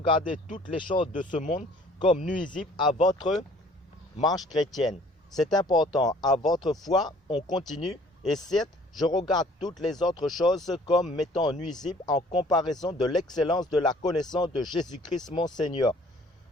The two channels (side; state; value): both; normal; correlation 0.55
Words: toutes les choses de ce monde comme nuisibles à votre marche chrétienne. C'est important. À votre foi, on continue. Et certes, je regarde toutes les autres choses comme m'étant nuisibles en comparaison de l'excellence de la connaissance de Jésus-Christ mon Seigneur,